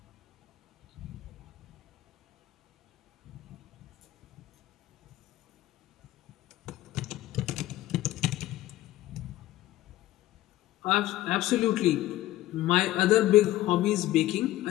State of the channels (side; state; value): right; quieter; 15.5 dB